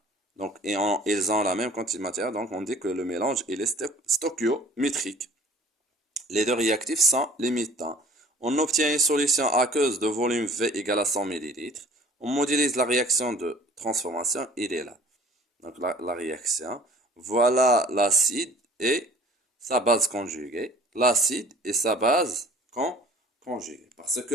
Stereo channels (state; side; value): normal; both; correlation 0.50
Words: donc, ils ont la même quantité de matière, donc on dit que le mélange il est stoichiométrique. Les deux réactifs sont limitants. On obtient une solution aqueuse de volume V égale à 100 ml. On modélise la réaction de transformation, il est là. Donc la réaction, voilà l'acide et sa base conjuguée. L'acide et sa base conjuguée. Parce